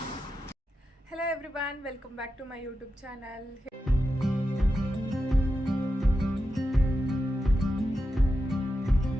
Hello everyone, welcome back to my YouTube channel.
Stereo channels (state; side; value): normal; both; correlation 0.89